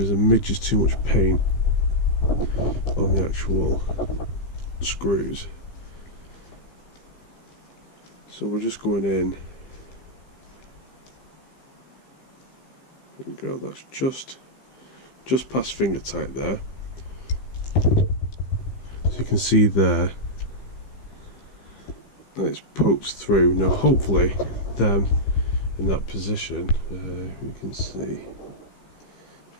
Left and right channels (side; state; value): right; late; 15 ms